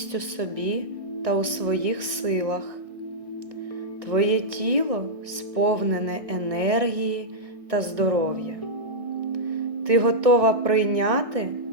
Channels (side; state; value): left; late; 1.6 ms